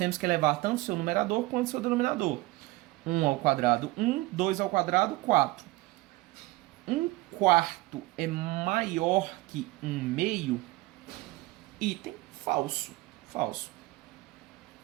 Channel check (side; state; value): left; quieter; 20.1 dB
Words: que elevar tanto o seu numerador quanto o seu denominador. 1 ao quadrado, 1. 2 ao quadrado, 4. 1 quarto é maior que 1 meio? Item falso. Falso.